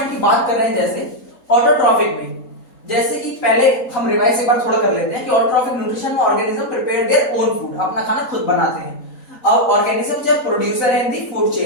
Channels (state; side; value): late; right; 3.9 ms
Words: की बात कर रहे हैं, जैसे ऑटोट्रॉफिक में, जैसे कि पहले हम रिवाइज एक बार थोड़ा कर लेते हैं कि ऑटोट्रॉफिक न्यूट्रिशन में organism prepare their own food, अपना खाना खुद बनाते हैं। अब ऑर्गेनिज्म जब प्रोड्यूसर है इन दी फूड